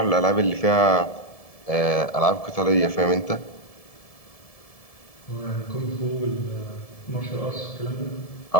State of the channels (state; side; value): late; right; 1.7 ms